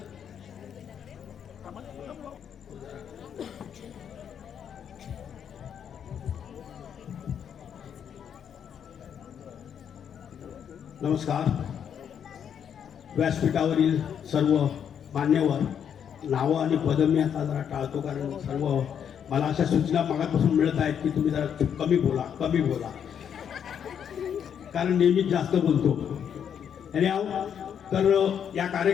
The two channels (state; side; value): quieter; right; 8.3 dB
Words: नमस्कार. व्यासपीठावरील सर्व मान्यवर, नावं आणि पदं मी आता जरा टाळतो कारण सर्व मला अशा सूचना मागापासून मिळत आहेत की तुम्ही जरा कमी बोला कारण नेहमीच जास्त बोलतो. आणि तर या